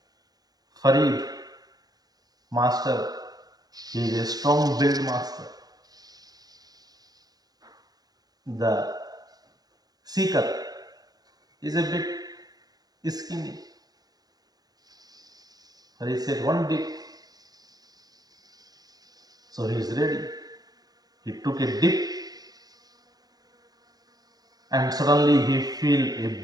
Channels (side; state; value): left; late; 0.19 ms